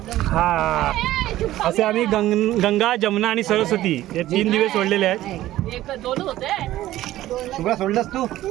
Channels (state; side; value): quieter; left; 14.9 dB